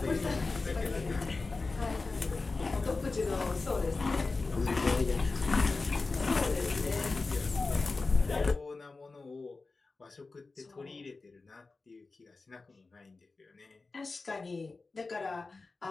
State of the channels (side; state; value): right; quieter; 3.8 dB